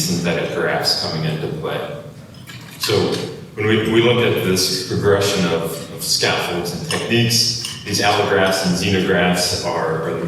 synthetic grafts coming into play. So when we look at this progression of scaffolds and techniques, these allografts and xenografts are the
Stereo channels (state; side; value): identical; both; correlation 1.00